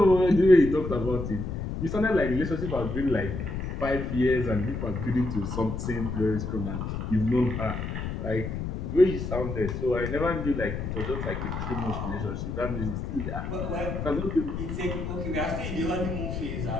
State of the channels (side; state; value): left; noise; rumble, 4 dB below the sound